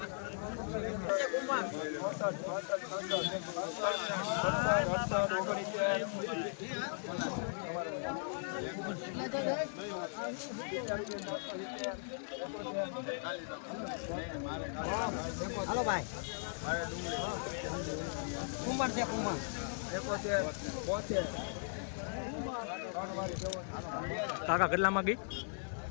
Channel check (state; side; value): silent; right; digital silence